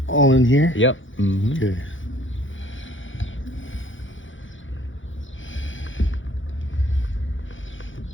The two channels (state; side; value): late; right; 0.56 ms